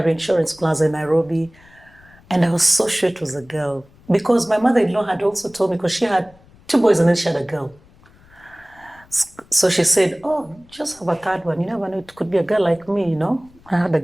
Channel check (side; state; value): left; noise; rumble, 27 dB below the sound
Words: Insurance Plaza in Nairobi. And I was so sure it was a girl. Because my mother-in-law had also told me, because she had 2 boys and then she had a girl. So she said, oh, just have a third one. You never know, it could be a girl like me, I had a